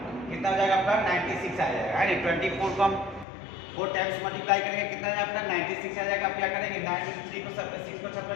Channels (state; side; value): drops out; right; at 3.2 s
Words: कितना हो जाएगा आपका 96 आ जाएगा, है नी। 24 को हम 4 टाइम्स मल्टीप्लाई करेंगे, कितना आ जाएगा आपका 96 आ जाएगा। आप क्या करेंगे 9 में 3 को 6 को सब